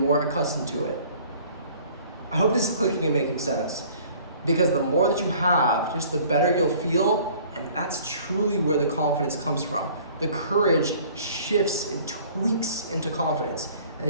accustomed to it. I hope this is clicking and making sense, because the more that you have, just the better you'll feel, and that's truly where the confidence comes from the courage shifts and tweaks into confidence. And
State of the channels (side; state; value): both; inverted; correlation -0.52